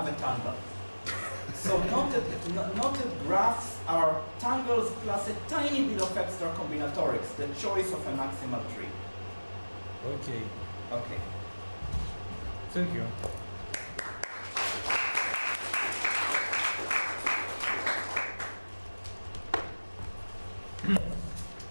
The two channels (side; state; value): both; inverted; correlation -1.00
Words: a tangle. So knotted graphs are tangles plus a tiny bit of extra combinatorics, the choice of a maximal tree. Okay. Okay. Thank you.